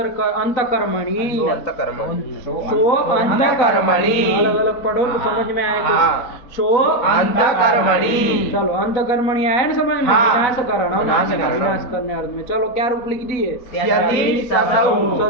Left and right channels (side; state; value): right; late; 3.9 ms